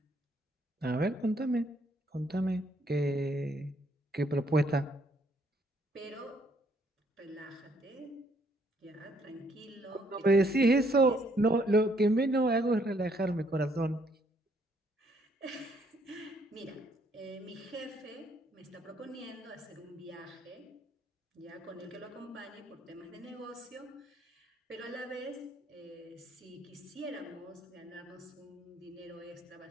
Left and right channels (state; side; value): normal; both; correlation 0.69